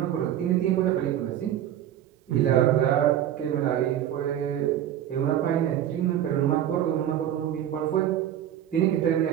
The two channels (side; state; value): left; quieter; 11.1 dB